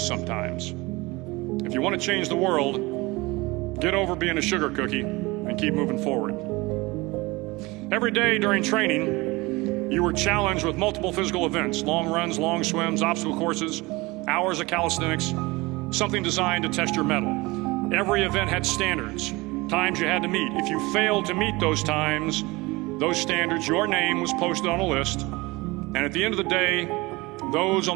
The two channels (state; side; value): quieter; left; 22.8 dB